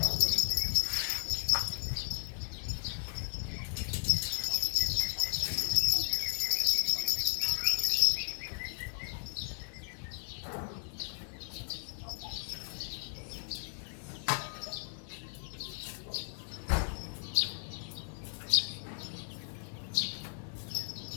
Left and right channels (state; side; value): silent; right; 54 dB below the other